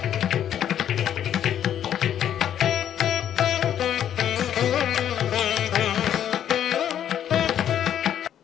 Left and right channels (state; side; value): quieter; right; 10.1 dB